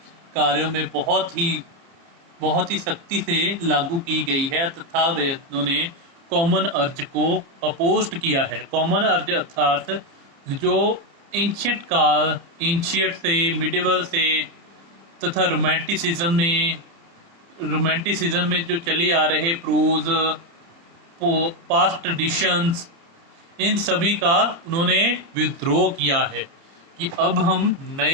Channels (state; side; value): late; left; 30 ms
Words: कार्यों में बहुत ही बहुत ही सख्ती से लागू की गई है तथा वे उन्होंने कॉमन अर्ज को अपोस्ट किया है। कॉमन अर्ज अर्थात जो एंशियट से, मिडिवल से तथा रोमांटिसिज्म में जो चले आ रहे प्रोज, पास्ट ट्रेडिशंस, इन सभी का उन्होंने विद्रोह किया है कि अब हम